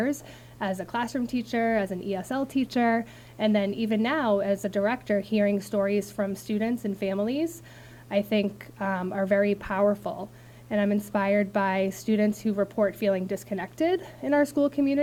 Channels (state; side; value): identical; both; correlation 1.00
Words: as a classroom teacher, as an ESL teacher, and then even now as a director, hearing stories from students and families, I think are very powerful. And I'm inspired by students who report feeling disconnected in our school